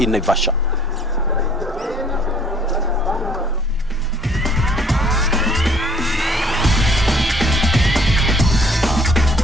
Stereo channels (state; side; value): normal; both; correlation 0.57